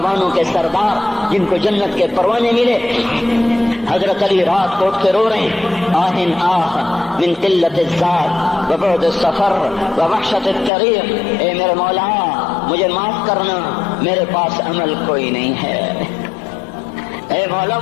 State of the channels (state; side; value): drops out; right; at 10.7 s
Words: کے سردار جن کو جنت کے پروانے ملے۔ حضرت علی رات کو اٹھ کے رو رہے ہیں، آہن آہ من قلت الذات وبعد السفر ووحشت الطریق، اے میرے مولا مجھے معاف کرنا، میرے پاس عمل کوئی نہیں ہے، اے مولا